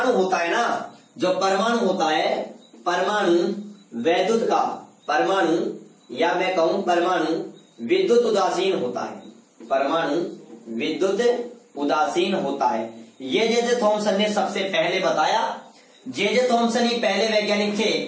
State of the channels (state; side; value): identical; both; correlation 1.00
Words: होता है ना, परमाणु या मैं कहूं परमाणु विद्युत उदासीन होता है। ये जे थॉमसन ने सबसे पहले बताया। जे थॉमसन ही पहले वैज्ञानिक थे